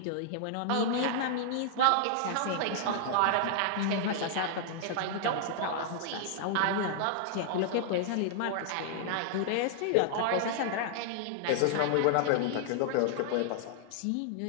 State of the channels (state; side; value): different; both; correlation -0.01